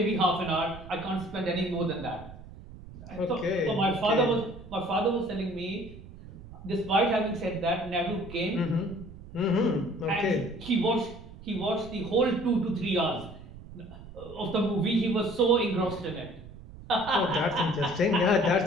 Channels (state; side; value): noise; right; rumble, 16 dB below the sound